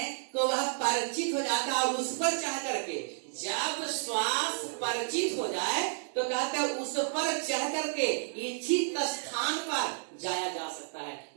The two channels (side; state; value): left; silent; digital silence